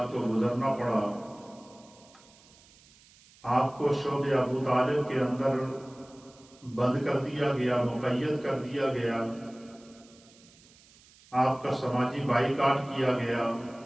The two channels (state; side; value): noise; right; hiss, 26 dB below the sound